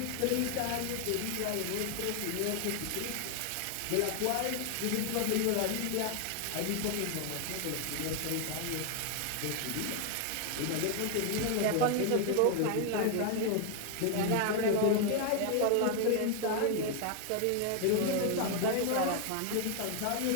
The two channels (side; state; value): both; different; correlation 0.00